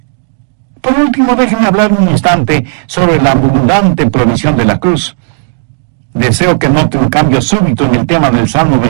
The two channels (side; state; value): left; silent; digital silence